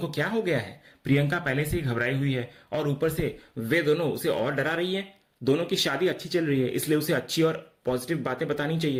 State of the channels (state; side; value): identical; both; correlation 1.00